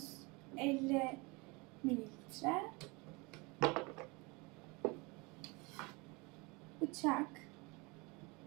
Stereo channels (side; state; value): left; quieter; 26.8 dB